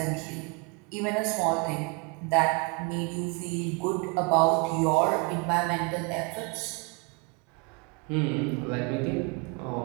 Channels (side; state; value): left; quieter; 31.8 dB